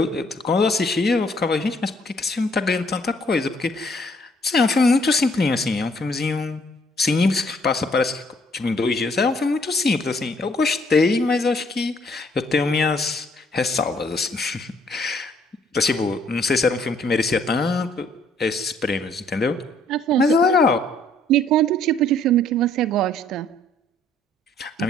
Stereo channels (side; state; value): both; normal; correlation 0.64